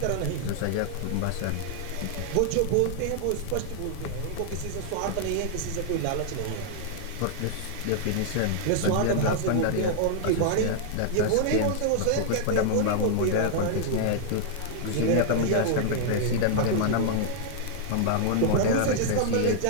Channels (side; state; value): both; different; correlation -0.01